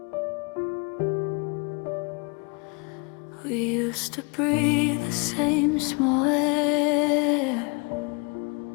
used to breathe the same small air.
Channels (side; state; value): right; quieter; 31.8 dB